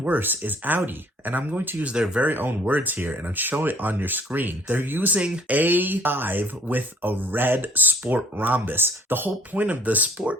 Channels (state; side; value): normal; both; correlation 0.56